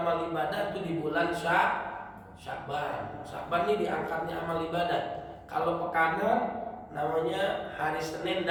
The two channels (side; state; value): both; identical; correlation 1.00